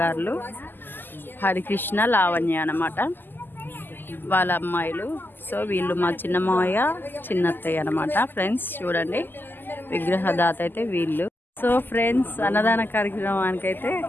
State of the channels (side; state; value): right; late; 0.093 ms